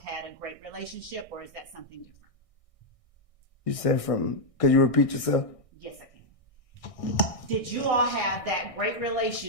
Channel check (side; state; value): right; late; 1.6 ms